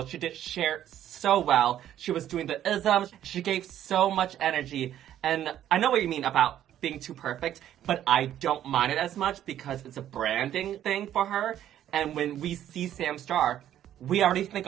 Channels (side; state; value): left; quieter; 11.4 dB